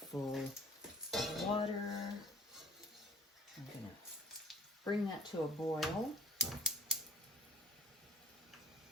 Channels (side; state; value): both; normal; correlation 0.50